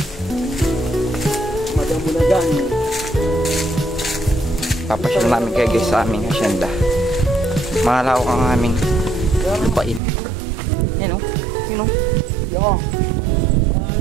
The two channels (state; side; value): drops out; left; at 10.0 s